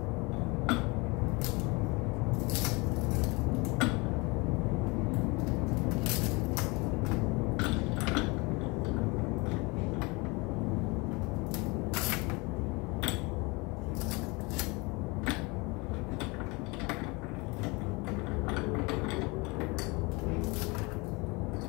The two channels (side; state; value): right; quieter; 26.8 dB